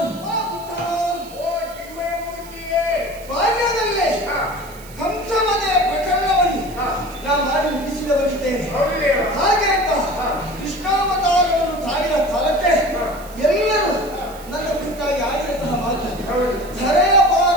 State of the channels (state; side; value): noise; right; hiss, 20 dB below the sound